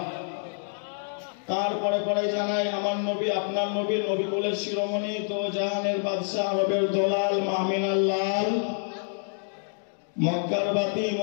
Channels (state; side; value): silent; right; digital silence